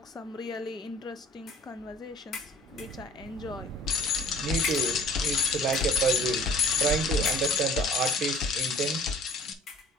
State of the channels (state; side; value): normal; both; correlation 0.51